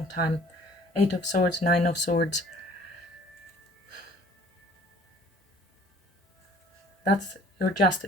time. Eight of Swords, Nine of Swords. That's your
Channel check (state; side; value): normal; both; correlation 0.53